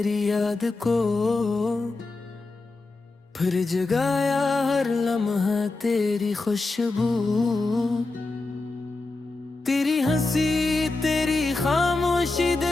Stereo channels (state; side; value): quieter; right; 3.4 dB